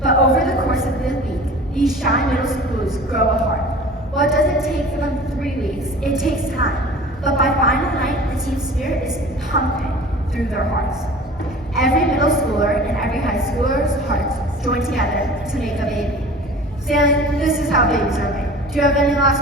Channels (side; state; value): both; normal; correlation 0.41